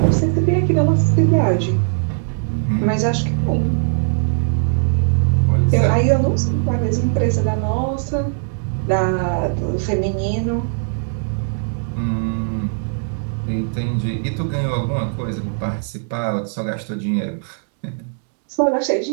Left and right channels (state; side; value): silent; left; digital silence